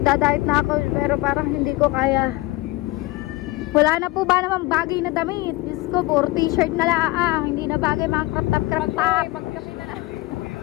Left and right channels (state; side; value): quieter; right; 20.3 dB